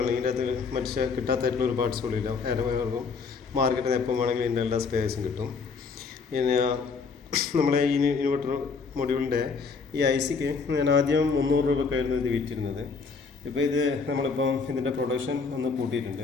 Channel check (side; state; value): right; quieter; 5.0 dB